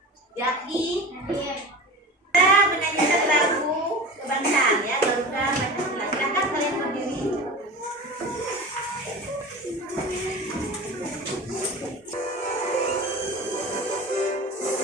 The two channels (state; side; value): normal; both; correlation 0.33